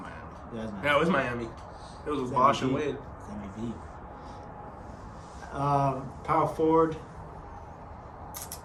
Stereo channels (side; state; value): both; identical; correlation 1.00